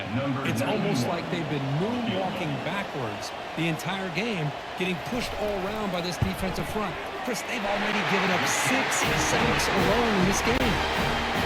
It's almost like they've been moonwalking backwards the entire game, getting pushed all around by this defensive front. Chris, they've already given up 6 sacks alone in this game.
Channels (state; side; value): identical; both; correlation 1.00